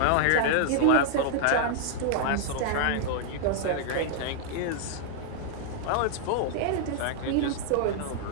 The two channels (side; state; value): both; different; correlation 0.00